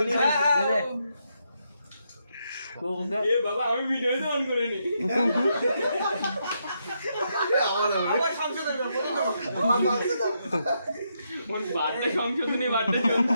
বাবা আমি ভিডিও অন করে নি বার্থডে সংশোধনী বার্থডে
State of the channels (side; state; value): both; inverted; correlation -0.80